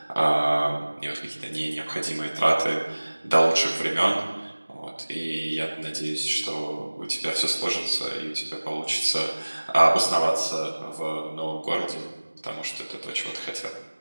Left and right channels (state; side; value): inverted; both; correlation -1.00